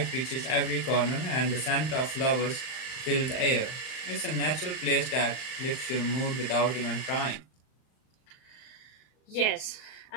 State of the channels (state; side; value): late; right; 39 ms